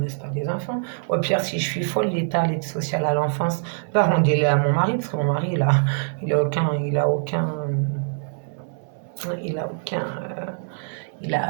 laisse pas des enfants. Au pire, si je suis folle, l'État, l'aide sociale à l'enfance, va rendre-les à mon mari, parce que mon mari, il a aucun, il a aucun, il a aucun,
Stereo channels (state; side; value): silent; left; 59 dB below the other